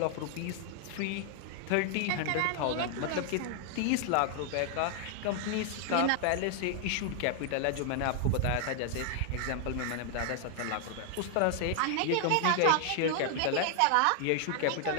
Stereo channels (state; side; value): different; both; correlation 0.00